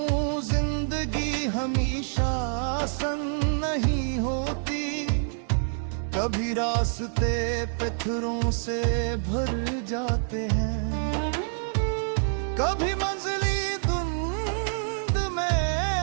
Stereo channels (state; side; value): silent; left; 60 dB below the other